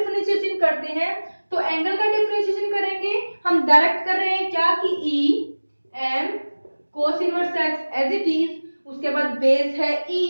करते हैं। तो एंगल का डिफरेंशिएशन करेंगे, हम डायरेक्ट कर रहे हैं क्या कि e m cos inverse x as it is, उसके बाद बेस है e,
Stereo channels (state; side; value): inverted; both; correlation -1.00